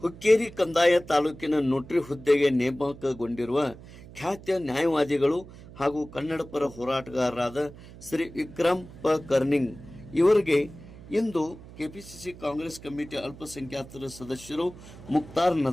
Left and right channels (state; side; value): noise; right; hum, 18 dB below the sound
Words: ಹುಕ್ಕೇರಿ ಕಂದಾಯ ತಾಲೂಕಿನ ನೋಟ್ರಿ ಹುದ್ದೆಗೆ ನೇಮಕಗೊಂಡಿರುವ ಖ್ಯಾತ ನ್ಯಾಯವಾದಿಗಳು ಹಾಗೂ ಕನ್ನಡ ಪರ ಹೋರಾಟಗಾರರಾದ ಶ್ರೀ ವಿಕ್ರಮ್ ಪ ಕರ್ನಿಂಗ್ ಇವರಿಗೆ ಇಂದು ಕೆಪಿಸಿಸಿ ಕಾಂಗ್ರೆಸ್ ಕಮಿಟಿ ಅಲ್ಪಸಂಖ್ಯಾತರ ಸದಸ್ಯರು ಮುಕ್ತಾರ್